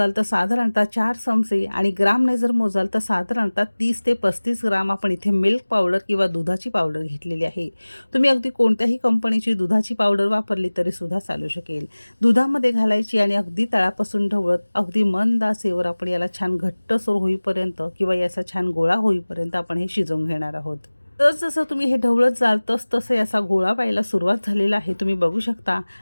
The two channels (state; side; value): inverted; both; correlation -1.00